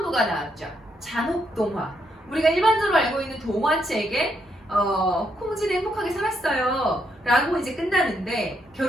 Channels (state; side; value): normal; both; correlation 0.77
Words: 나왔죠. 잔혹동화. 우리가 일반적으로 알고 있는 동화책에 홍지는 행복하게 살았어요 라고 이제 끝나는데,